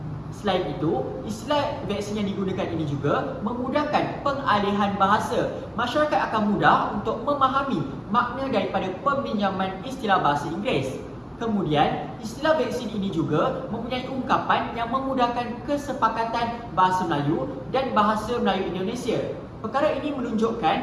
Selain itu, istilah vaksin yang digunakan ini juga memudahkan pengalihan bahasa. Masyarakat akan mudah untuk memahami makna daripada peminjaman istilah bahasa Inggeris. Kemudian, istilah vaksin ini juga mempunyai ungkapan yang memudahkan kesepakatan bahasa Melayu dan bahasa Melayu Indonesia. Perkara ini menunjukkan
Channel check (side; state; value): both; identical; correlation 1.00